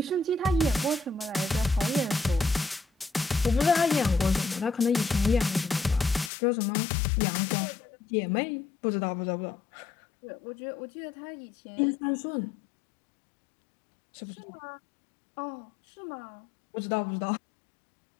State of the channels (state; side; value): drops out; right; at 6.3 s